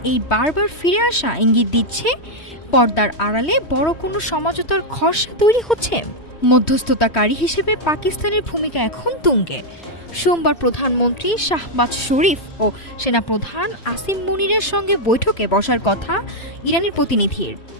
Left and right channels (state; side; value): late; right; 3.1 ms